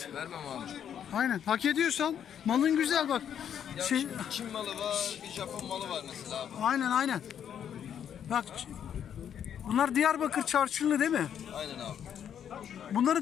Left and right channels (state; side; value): quieter; right; 9.0 dB